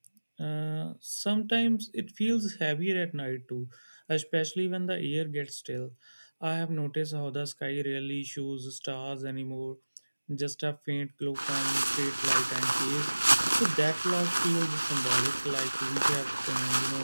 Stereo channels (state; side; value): inverted; both; correlation -1.00